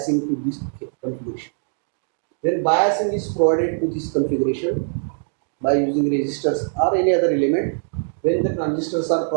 to this configuration. When biasing is provided to this configuration by using resistors or any other element, when the transistors are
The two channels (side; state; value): left; silent; digital silence